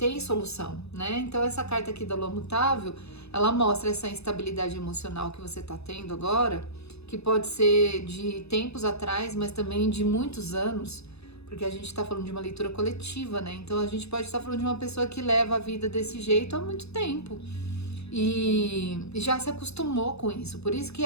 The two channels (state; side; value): late; right; 0.79 ms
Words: solução, né? Então essa carta aqui da Lua Mutável, ela mostra essa instabilidade emocional que você está tendo agora, que pode ser de tempos atrás, mas também de muitos anos, porque a gente está falando de uma leitura coletiva, né? Então a gente pode estar falando de uma pessoa que leva a vida desse jeito há muito tempo e já se acostumou com isso. Por isso que